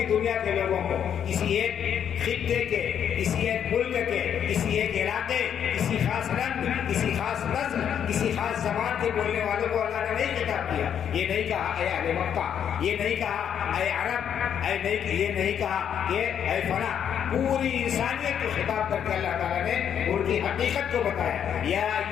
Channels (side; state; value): right; quieter; 8.8 dB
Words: دنیا کے لوگوں کو، کسی ایک خطے کے، کسی ایک ملک کے، کسی ایک علاقے، کسی خاص رنگ، کسی خاص نسل، کسی خاص زبان کے بولنے والوں کو اللہ نے نہیں خطاب کیا۔ یہ نہیں کہا اے اہل مکہ، یہ نہیں کہا اے عرب، یہ نہیں کہا کہ اے فلاں، پوری انسانیت کو خطاب کر کے اللہ تعالیٰ نے ان کی حقیقت کو بتایا۔ یا